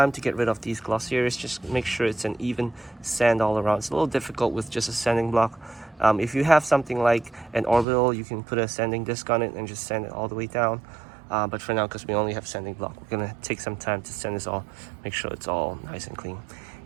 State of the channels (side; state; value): left; drops out; at 7.9 s